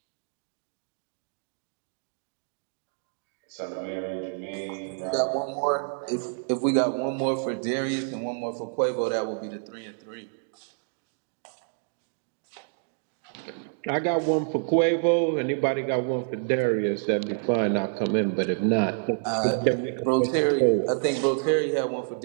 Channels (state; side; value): silent; left; digital silence